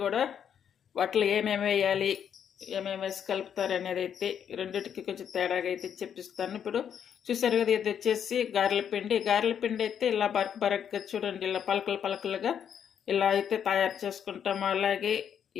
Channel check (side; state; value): right; quieter; 8.5 dB